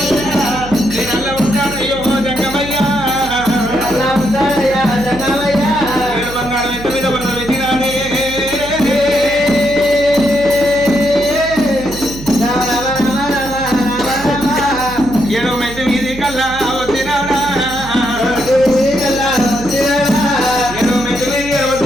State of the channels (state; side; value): noise; right; hum, 13 dB below the sound